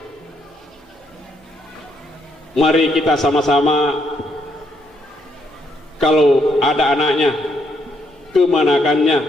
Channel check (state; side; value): normal; both; correlation 0.74